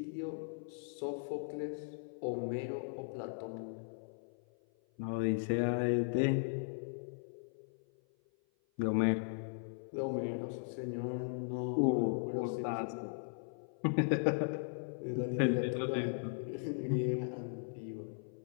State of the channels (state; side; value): silent; right; 53 dB below the other